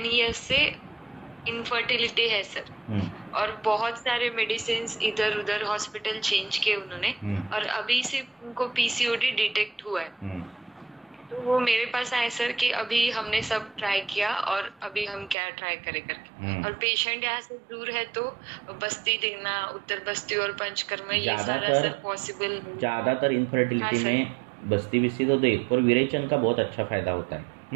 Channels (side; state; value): left; drops out; at 15.4 s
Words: इयर्स से इनफर्टिलिटी है सर. और बहुत सारे मेडिसिन इधर उधर हॉस्पिटल चेंज किए उन्होंने, और अभी सिर्फ उनको पीसीओडी डिटेक्ट हुआ है. तो वो मेरे पास आए सर कि अभी हमने सब ट्राई किया और अभी हम क्या ट्राई करें करके. और पेशेंट यहाँ से दूर है, तो बस्ती दिखना, उत्तर बस्ती और पंचकर्म ये सारा सर पॉसिबल. ज्यादातर इनफर्टिलिटी में बस्ती बिस्ती तो देख, पर विरेचन का बहुत अच्छा फायदा होता